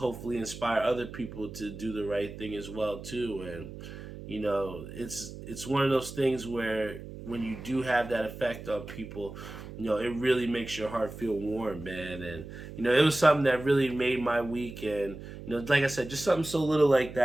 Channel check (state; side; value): noise; right; hum, 12 dB below the sound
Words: inspire other people to do the right thing as well too. And it's one of those things where when you do have that effect on people, it really makes your heart feel warm, man. And it was something that really made my week. And like I said, just something so little like